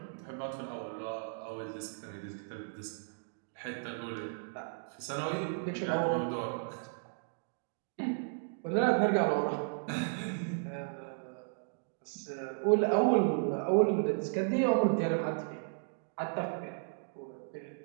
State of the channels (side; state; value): left; silent; digital silence